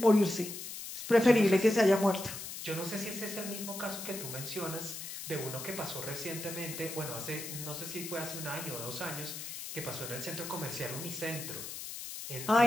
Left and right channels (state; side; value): noise; left; hiss, 8 dB below the sound